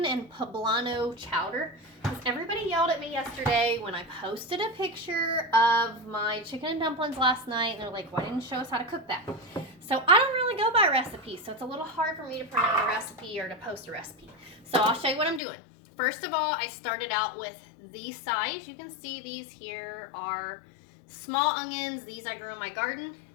and poblano chowder. Because everybody yelled at me yesterday when I posted a picture of my chicken and dumplings last night. And they're like, why didn't you show us how to cook that? So I don't really go by recipes. So it's a little hard for me to print out a recipe or to post a recipe. So I'll show you what I'm doing. First of all, I started out with these size. You can see these here are small onions. These I grew in my garden.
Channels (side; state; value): right; drops out; at 15.4 s